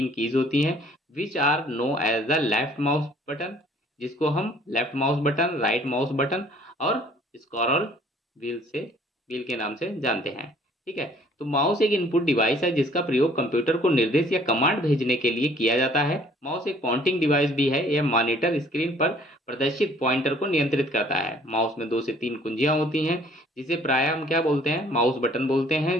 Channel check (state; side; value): normal; both; correlation 0.57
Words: कीज होती हैं, which are know as the left mouse button, जिसको हम left mouse button, right mouse button और स्क्रॉल व्हील के नाम से जानते हैं, ठीक है। तो माउस एक इनपुट डिवाइस है जिसका प्रयोग कंप्यूटर को निर्देश या कमांड भेजने के लिए किया जाता है। माउस एक पॉइंटिंग डिवाइस भी है, यह मॉनिटर स्क्रीन पर प्रदर्शित पॉइंटर को नियंत्रित करता है। माउस में 2 से 3 कुंजियां होती हैं, जिसे प्राय हम क्या बोलते हैं, माउस बटन बोलते